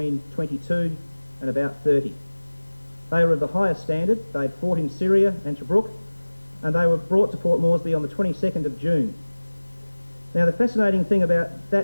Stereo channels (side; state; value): both; inverted; correlation -1.00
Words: 22 and about 30. They were of the highest standard. They'd fought in Syria and Tobruk, and they were brought to Port Moresby on the 22nd of June. Now, the fascinating thing about